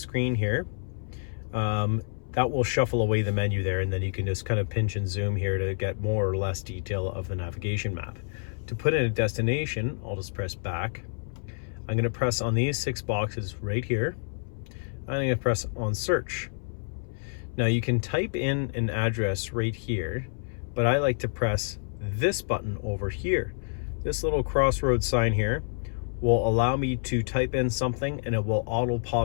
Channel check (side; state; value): right; silent; 59 dB below the other